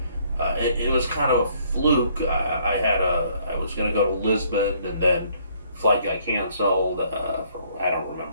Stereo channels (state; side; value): inverted; both; correlation -0.64